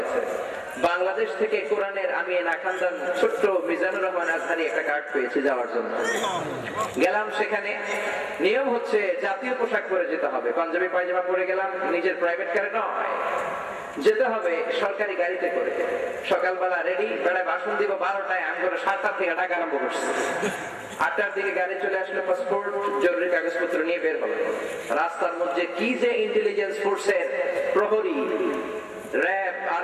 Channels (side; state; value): both; identical; correlation 1.00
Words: বাংলাদেশ থেকে কোরআনের আমি নাখান্দান ছোট্ট মিজানুর রহমান আজহারি একটা কার্ড পেয়েছি যাওয়ার জন্য। গেলাম সেখানে। নিয়ম হচ্ছে জাতীয় পোশাক পরে যেতে হবে, পাঞ্জাবি পায়জামা পরে গেলাম, নিজের প্রাইভেট কারে নয়, যেতে হবে সরকারি গাড়িতে করে। সকালবেলা রেডি, বেড়ায় ভাষণ দিব 12টায়, আমি করে 7টা থেকে ডাকা আরম্ভ করছি। 8টার দিকে গাড়ি চলে আসলো, পাসপোর্ট জরুরি কাগজপত্র নিয়ে বের হলো। রাস্তার মধ্যে কি যে ইন্টেলিজেন্স ফোর্সের প্রহরী, র্যাব,